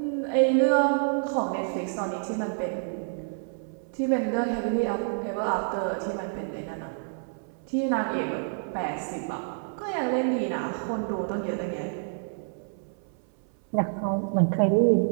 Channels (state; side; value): silent; left; 59 dB below the other